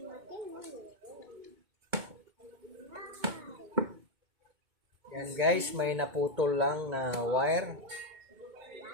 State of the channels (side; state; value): left; late; 2.2 ms